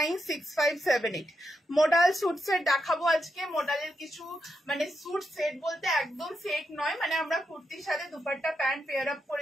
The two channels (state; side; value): normal; both; correlation 0.84